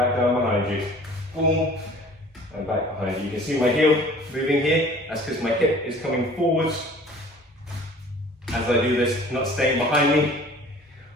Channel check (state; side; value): normal; both; correlation 0.48